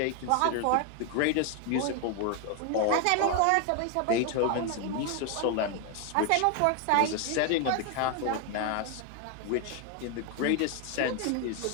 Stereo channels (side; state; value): both; different; correlation 0.01